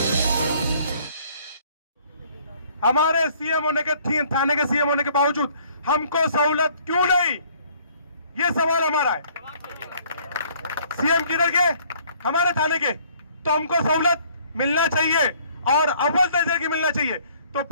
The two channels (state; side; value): inverted; both; correlation -0.59